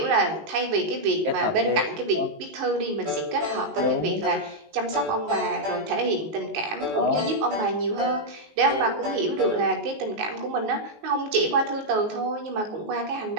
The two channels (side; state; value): left; late; 19 ms